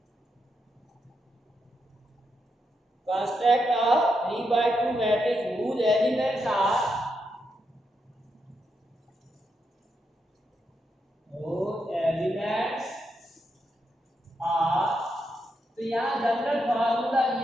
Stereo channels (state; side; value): normal; both; correlation 0.83